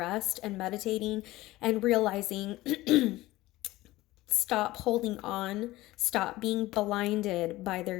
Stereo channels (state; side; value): quieter; right; 17.9 dB